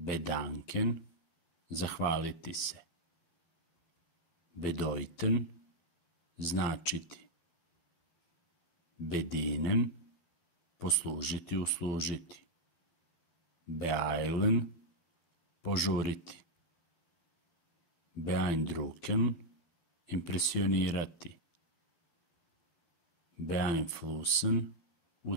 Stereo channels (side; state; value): right; late; 12 ms